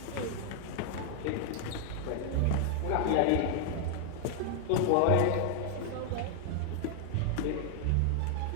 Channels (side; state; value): both; different; correlation 0.00